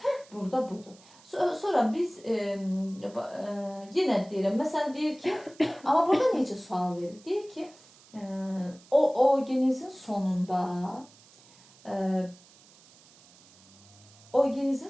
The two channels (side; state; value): right; noise; hiss, 25 dB below the sound